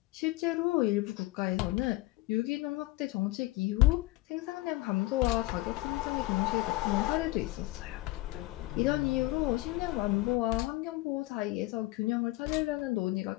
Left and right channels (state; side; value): quieter; right; 19.4 dB